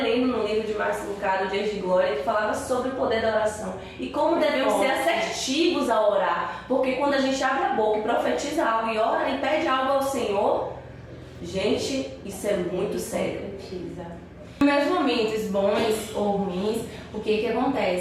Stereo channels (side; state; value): both; identical; correlation 1.00